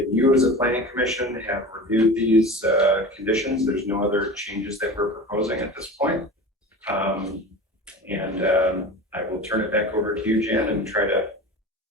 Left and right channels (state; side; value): normal; both; correlation 0.33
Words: as a planning commission have reviewed these conditions. There's no other changes that we're proposing at this point. I will turn it back over to you, Jan, and try to